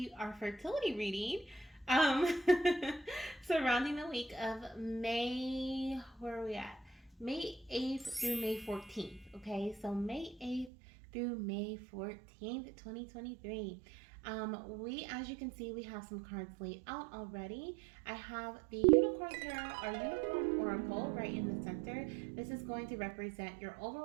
our fertility reading. Um, Surrounding the week of May, where are we at? May 8th through May 14th. Okay, so May 8th through May 14th, 2023. As you can see, we have some cards laid out already. I have the Unicorn Tarot, our Unicorn Oracle, right in the center. This is going to represent your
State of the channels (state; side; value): drops out; left; at 10.7 s